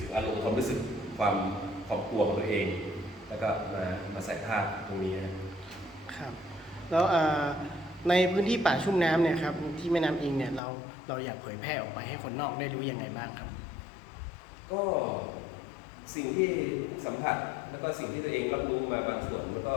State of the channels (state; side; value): drops out; right; at 10.6 s